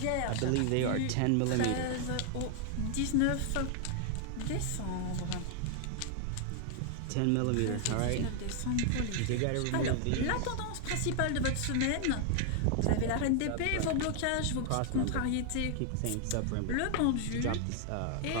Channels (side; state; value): both; different; correlation 0.00